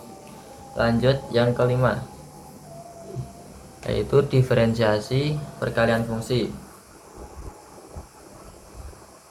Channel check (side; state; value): both; identical; correlation 1.00